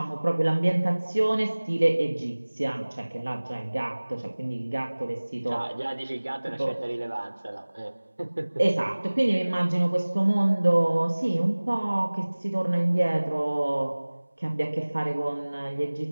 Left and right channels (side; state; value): both; inverted; correlation -1.00